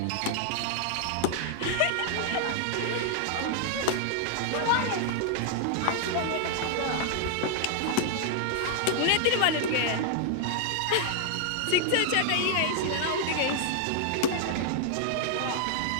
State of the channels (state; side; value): different; both; correlation -0.01